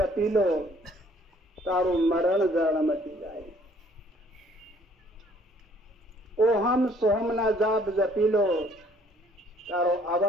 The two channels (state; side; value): normal; both; correlation 0.60